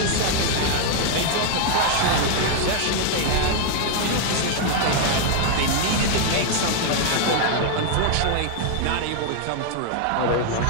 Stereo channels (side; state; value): both; different; correlation 0.00